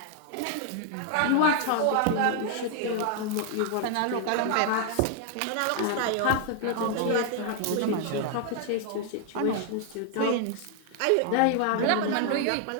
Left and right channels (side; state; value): both; different; correlation 0.00